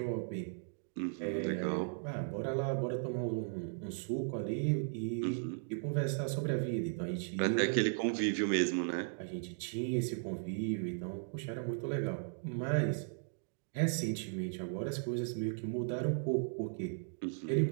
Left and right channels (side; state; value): left; silent; digital silence